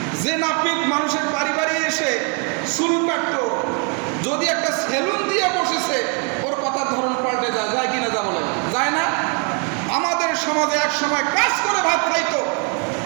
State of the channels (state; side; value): quieter; left; 37.2 dB